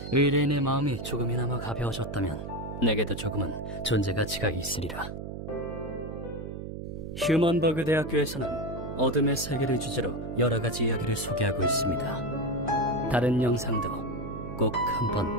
의뢰인의 마음이 조금이나마 가벼워졌다면 내게도 조금은 존재 가치가 있으리라. 휴먼버그 대학교에서는 어둠의 세계를 주제로 여러 가지 이야기를 소개하고 있습니다. 다른 영상도 꼭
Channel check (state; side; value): noise; right; hum, 8 dB below the sound